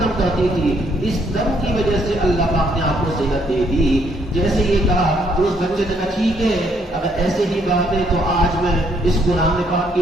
کرتی تھی، اس دم کی وجہ سے اللہ پاک نے آپ کو صحت دے دی۔ جیسے یہ کہا تو اس بچے نے کہا ٹھیک ہے، اگر ایسے ہی بات ہے تو آج میں اس قرآن پاک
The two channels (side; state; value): both; normal; correlation 0.70